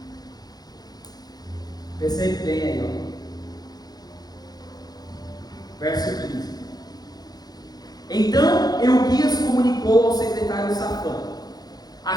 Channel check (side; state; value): right; late; 0.19 ms